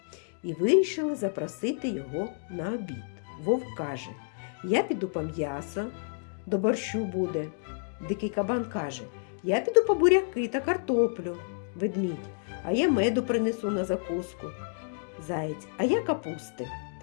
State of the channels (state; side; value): silent; right; digital silence